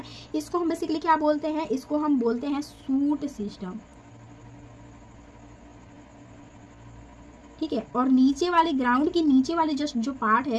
इसको हम बेसिकली क्या बोलते हैं, इसको हम बोलते हैं शूट सिस्टम, ठीक है। और नीचे वाले, ग्राउंड की नीचे वाले जस्ट जो पार्ट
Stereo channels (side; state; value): both; identical; correlation 1.00